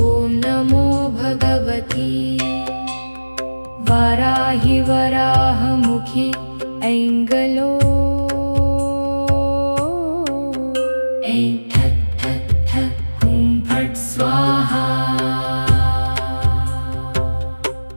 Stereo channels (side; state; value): both; inverted; correlation -1.00